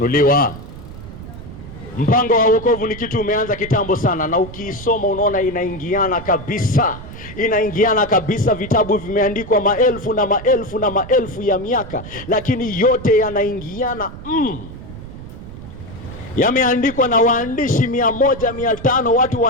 Mpango wa wokovu ni kitu umeanza kitambo sana, na ukiisoma unaona inaingiana kabisa. Inaingiana kabisa, vitabu vimeandikwa maelfu na maelfu na maelfu ya miaka, lakini yote yanaingiana yameandikwa na waandishi 100, 500, watu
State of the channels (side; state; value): right; noise; rumble, 13 dB below the sound